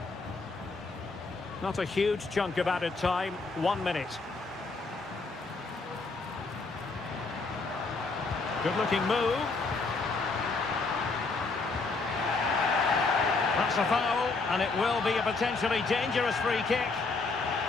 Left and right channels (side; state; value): right; quieter; 3.9 dB